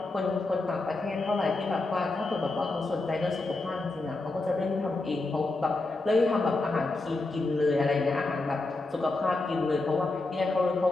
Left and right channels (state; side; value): quieter; right; 3.2 dB